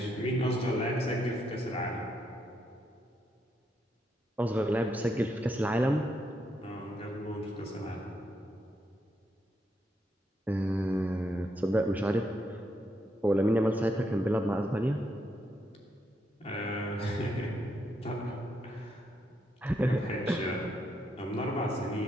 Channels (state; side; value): normal; both; correlation 0.79